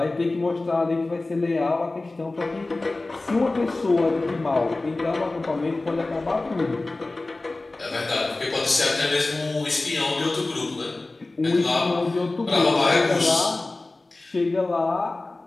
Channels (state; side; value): quieter; right; 3.1 dB